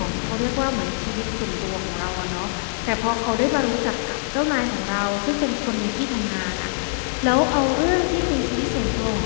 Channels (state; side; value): silent; right; digital silence